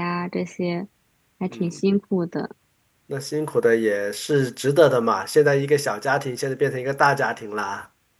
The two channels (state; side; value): identical; both; correlation 1.00